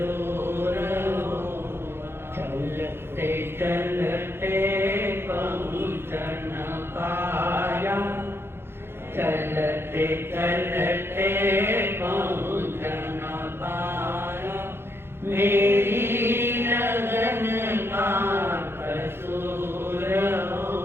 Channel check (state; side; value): late; left; 0.11 ms